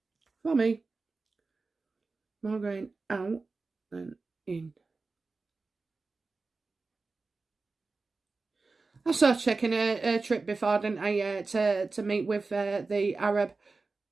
For me. More going out than in. I saw checking a trip before, didn't I, to meet with the Arab.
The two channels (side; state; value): left; quieter; 3.9 dB